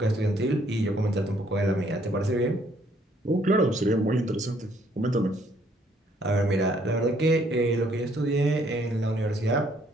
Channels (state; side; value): normal; both; correlation 0.66